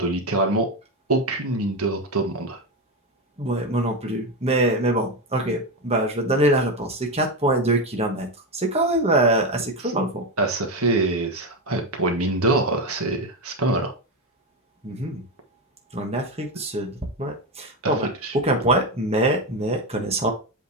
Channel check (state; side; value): normal; both; correlation 0.13